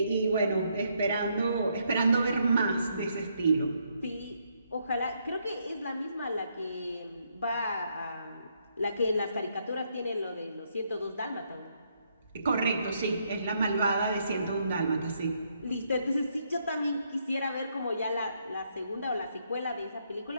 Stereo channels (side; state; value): both; inverted; correlation -0.75